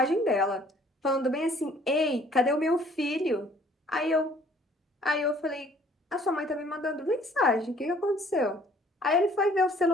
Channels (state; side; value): normal; both; correlation 0.58